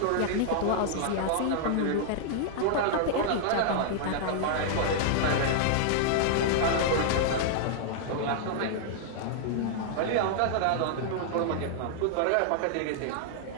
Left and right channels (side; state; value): both; different; correlation -0.01